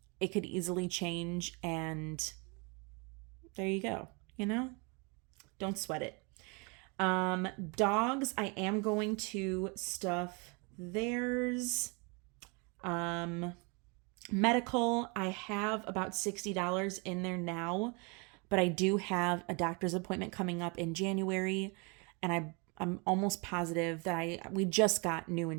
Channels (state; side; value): quieter; left; 31.4 dB